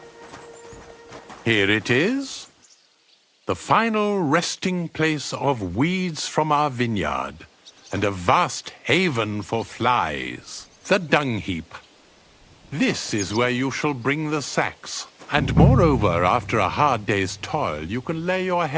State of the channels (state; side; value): identical; both; correlation 1.00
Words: Here it is, the final resting place of weeds from our vineyard, and a vast haven for flies, the dung heap. This is where you shall bring the sacks, and moreover, after a hard day's toil, you can lay your